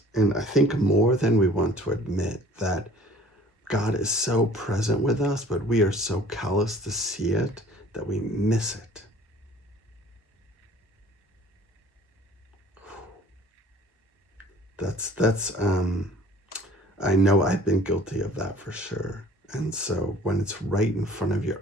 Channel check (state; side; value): normal; both; correlation 0.50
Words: And I think more than we want to admit, that God is so present with us, but we are so callous to see it that we miss it. That's I know I've been guilty of that for sure. And so when it's right in front of your